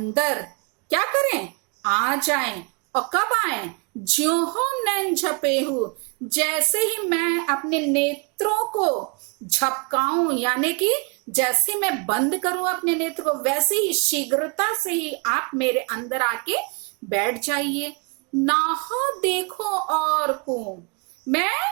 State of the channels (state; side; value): quieter; left; 33.3 dB